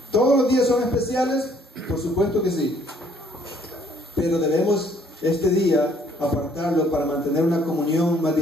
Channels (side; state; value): both; normal; correlation 0.62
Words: ¿Todos los días son especiales? Por supuesto que sí. Pero debemos este día apartarlo para mantener una comunión más